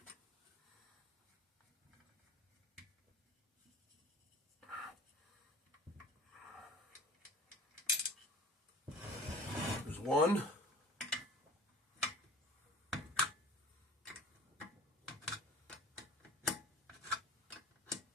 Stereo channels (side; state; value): both; normal; correlation 0.44